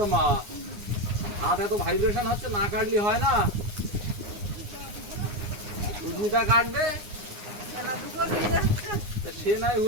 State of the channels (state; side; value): late; left; 9.7 ms